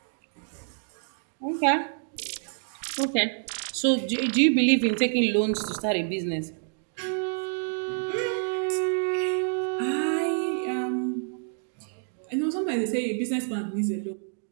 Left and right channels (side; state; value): left; silent; 60 dB below the other